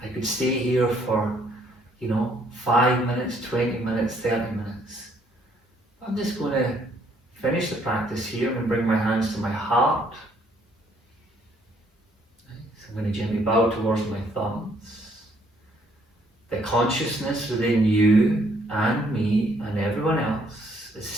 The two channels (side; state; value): both; normal; correlation 0.66